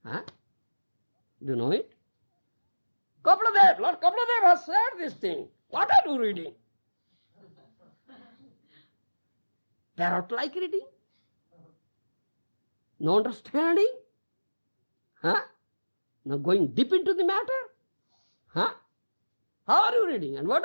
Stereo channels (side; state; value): both; inverted; correlation -1.00